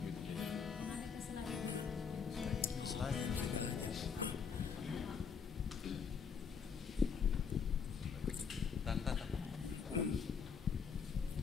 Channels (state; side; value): quieter; right; 6.2 dB